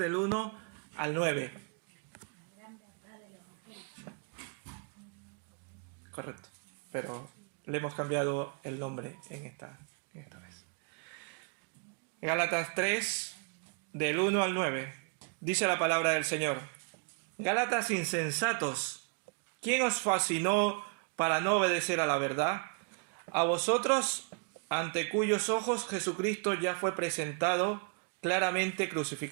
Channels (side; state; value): left; quieter; 36.7 dB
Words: 1 al 9. Correcto, pero le hemos cambiado el nombre en esta vez. Gálatas 3, del 1 al 9. Dice la palabra del Señor: Gálatas insensatos, ¿quién os fascinó para no obedecer a la verdad? A vosotros, ante cuyos ojos Jesucristo ya fue presentado claramente